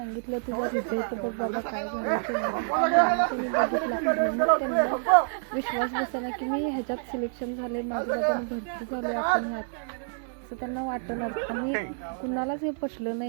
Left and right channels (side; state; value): left; silent; digital silence